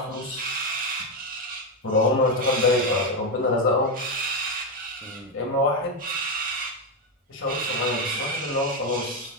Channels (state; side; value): normal; both; correlation 0.07